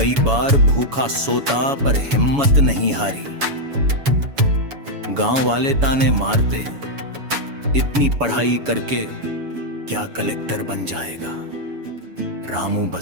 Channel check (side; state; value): left; late; 7.1 ms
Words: बार भूखा सोता पर हिम्मत नहीं हारी। गांव वाले ताने मारते, इतनी पढ़ाई करके क्या कलेक्टर बन जाएगा? रामू